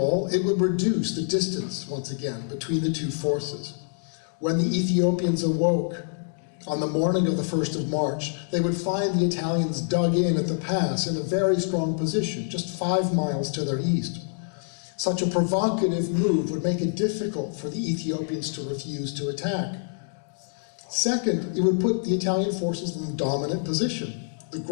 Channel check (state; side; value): silent; right; digital silence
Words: it would reduce the distance, once again, between the 2 forces. When the Ethiopians awoke on the morning of the 1st of March, they would find the Italians dug in at the pass in a very strong position, just 5 miles to their east. Such a provocative move would make it difficult for the Ethiopians to refuse to attack. Second, it would put the Italian forces in a dominant position. The